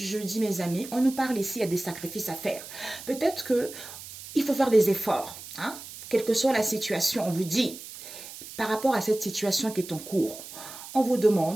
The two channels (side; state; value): right; noise; hiss, 13 dB below the sound